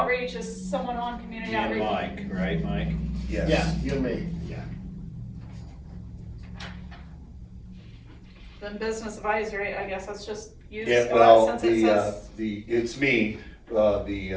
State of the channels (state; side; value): identical; both; correlation 1.00